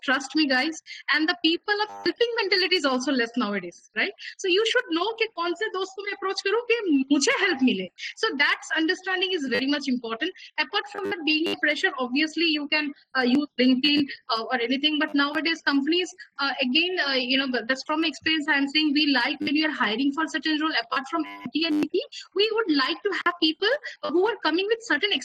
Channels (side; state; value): both; identical; correlation 1.00